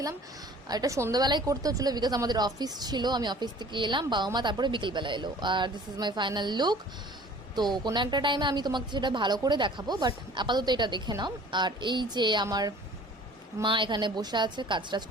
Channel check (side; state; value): both; normal; correlation 0.48